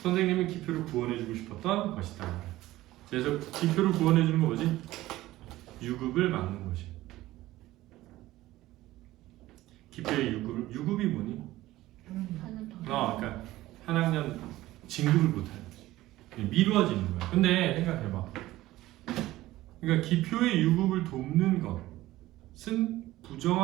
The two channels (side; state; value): left; quieter; 16.5 dB